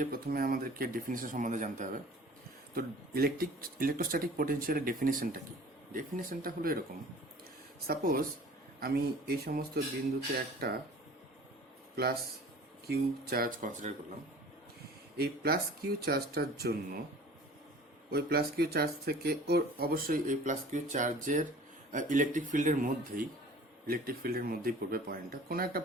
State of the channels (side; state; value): both; normal; correlation 0.46